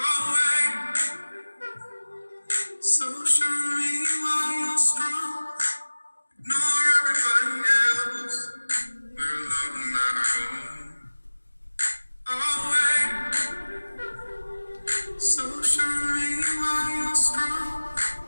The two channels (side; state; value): both; inverted; correlation -1.00